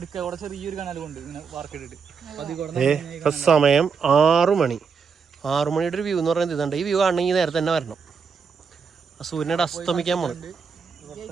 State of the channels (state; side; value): quieter; left; 5.8 dB